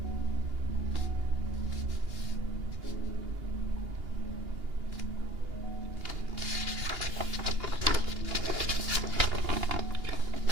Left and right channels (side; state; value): left; late; 2.8 ms